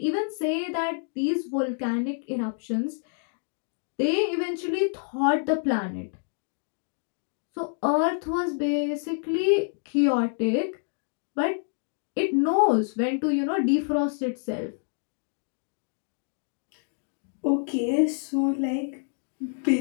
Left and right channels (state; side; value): silent; right; 60 dB below the other